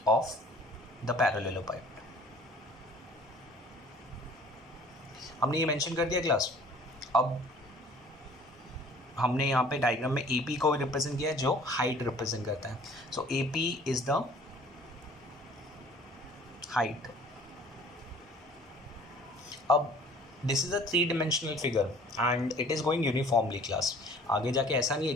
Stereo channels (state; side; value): normal; both; correlation 0.52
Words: ऑफ द पैरेललोपाइड. हमने ये मेंशन कर दिया क्लास. अब हमने यहाँ पे डायग्राम में ए पी को रिप्रेजेंट किया है, जो हाइट रिप्रेजेंट करता है. So a p is the height. अब this is a 3 dimensional figure and it is going uniformly class. आगे जाके ऐसा नहीं है